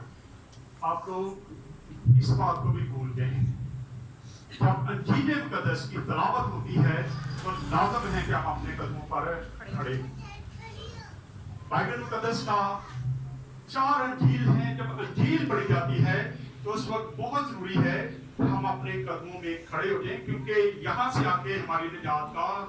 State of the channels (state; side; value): identical; both; correlation 1.00